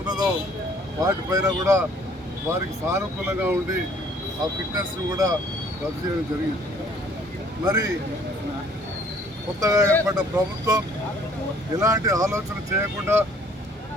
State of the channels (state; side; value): normal; both; correlation 0.58